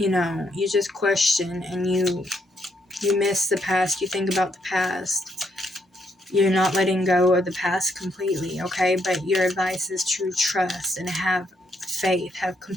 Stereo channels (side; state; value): both; normal; correlation 0.75